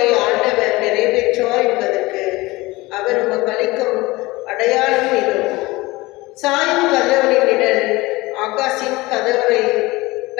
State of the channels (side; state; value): right; quieter; 21.2 dB